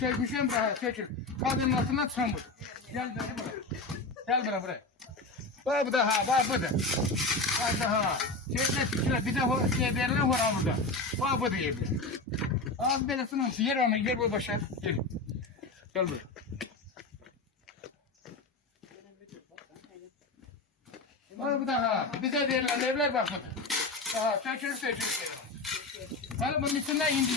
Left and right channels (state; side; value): quieter; right; 3.3 dB